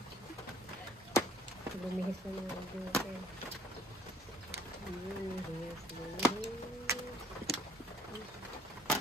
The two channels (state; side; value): normal; both; correlation 0.58